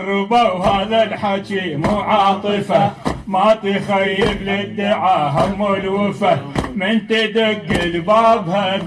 هذا الحكي مو عاطفة ما تخيب للدعاء هم الوفا من تدق لبابها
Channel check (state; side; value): identical; both; correlation 1.00